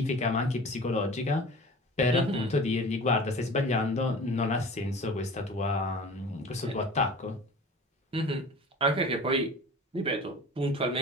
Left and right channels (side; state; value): both; normal; correlation 0.39